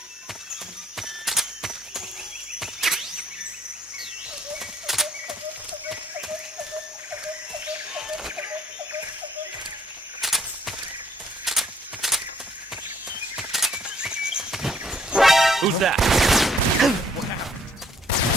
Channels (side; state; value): both; normal; correlation 0.64